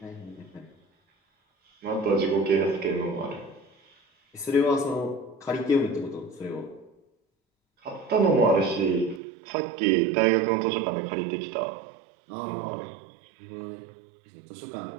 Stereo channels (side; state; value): left; drops out; at 9.2 s